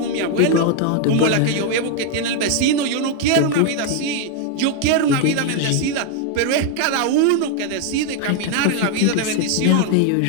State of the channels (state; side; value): different; both; correlation 0.00